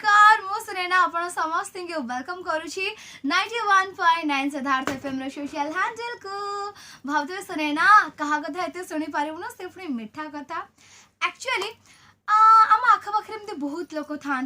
मु सुनेना आपण समस्त के वेलकम करूची 91.9 सिद्धार्थ एफएम रो सोशल हैंडल को भावते सुनेना कहा कथा एते सुनी पारिबु ना से पुनी मीठा कथा एक्चुअली आम आख पाखे बहुत लोक था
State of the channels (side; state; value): both; identical; correlation 1.00